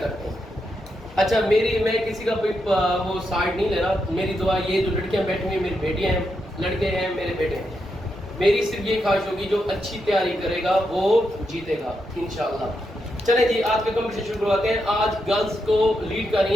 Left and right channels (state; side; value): normal; both; correlation 0.83